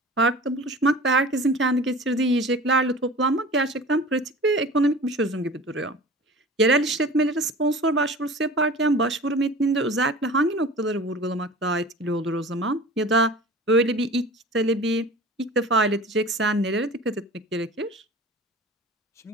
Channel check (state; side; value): normal; both; correlation 0.39